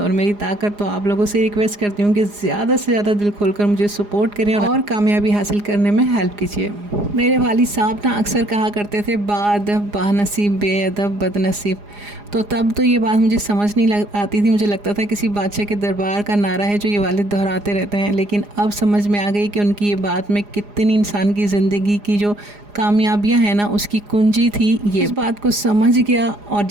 मेरी ताकत। तो आप लोगों से रिक्वेस्ट करती हूँ कि ज़्यादा से ज़्यादा दिल खोलकर मुझे सपोर्ट करें और कामयाबी हासिल करने में हेल्प कीजिए। मेरे वालिद साहब ना अक्सर कहा करते थे बाअदब बानसीब बेअदब बदनसीब। तो तब तो ये बात मुझे समझ नहीं आती थी, मुझे लगता था किसी बादशाह के दरबार का नारा है जो ये वालिद दोहराते रहते हैं। लेकिन अब समझ में आ गई कि उनकी ये बात में कितनी इंसान की ज़िंदगी की जो कामयाबियां हैं ना उसकी कुंजी थी। ये इस बात को समझ गया और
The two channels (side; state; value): left; late; 4.9 ms